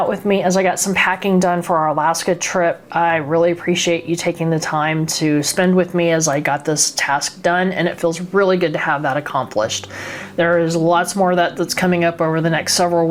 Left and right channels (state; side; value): identical; both; correlation 1.00